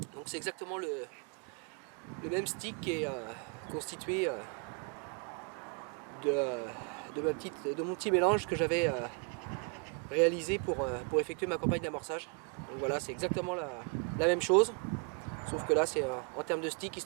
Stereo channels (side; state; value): left; quieter; 37.9 dB